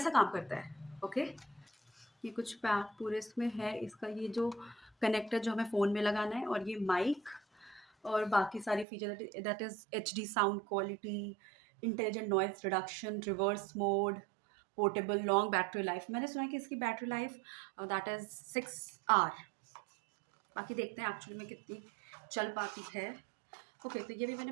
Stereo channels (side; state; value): left; drops out; at 8.8 s